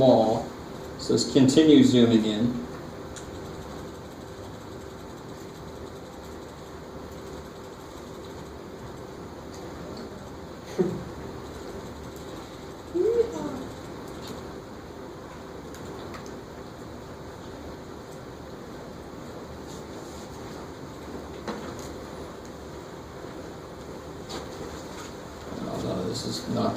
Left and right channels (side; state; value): both; identical; correlation 1.00